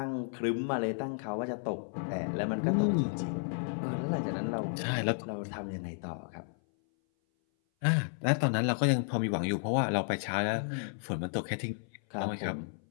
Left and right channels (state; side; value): silent; right; 56 dB below the other